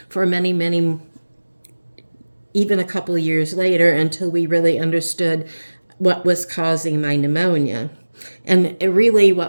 for many, many, even a couple of years later, until we really understood what was causing my pneumonia. And really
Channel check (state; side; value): inverted; both; correlation -1.00